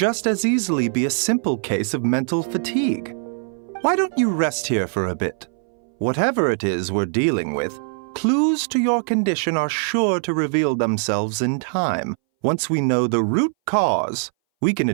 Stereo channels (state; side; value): silent; left; 61 dB below the other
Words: as easily be a simple case of mental fatigue. Why don't you rest here for a bit? Whatever it is we're dealing with, clues to your condition are sure to reveal themselves in time. Once we know the root cause, we can